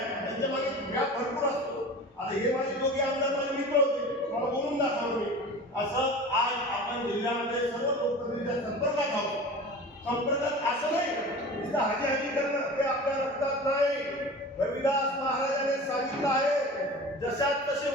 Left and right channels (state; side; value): normal; both; correlation 0.36